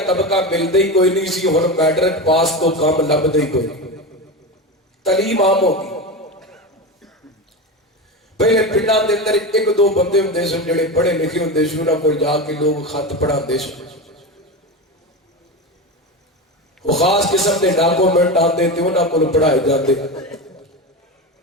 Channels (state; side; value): normal; both; correlation 0.22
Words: طبقہ ملتا ہی کوئی نہیں سی، ہن میٹرک پاس تو کام لبدا ہی کوئی نہیں، تعلیم عام ہو گئی۔ پہلے پنڈاں دے اندر 1-2 بندے ہوندے سن جڑے پڑھے لکھے ہوندے سن، انہاں کول جا کے لوگ خط پڑھاندے سن۔ وہ خاص قسم کے ڈاکومنٹ آتے تھے انہوں کو پڑھائے جاتے